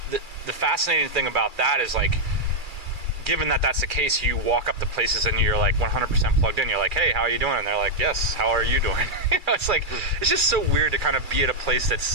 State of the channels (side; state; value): left; late; 2.4 ms